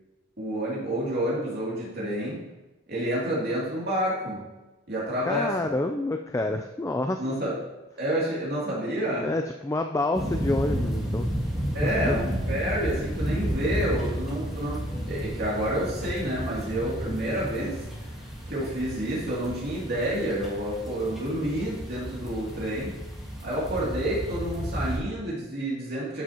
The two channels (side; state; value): both; normal; correlation 0.53